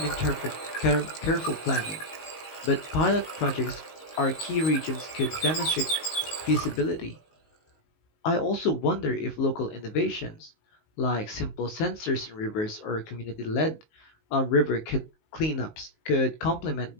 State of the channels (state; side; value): late; right; 19 ms